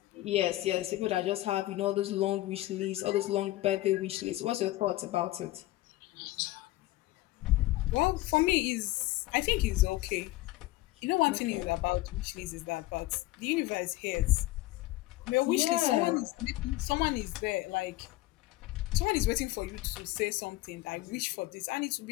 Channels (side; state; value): right; quieter; 17.7 dB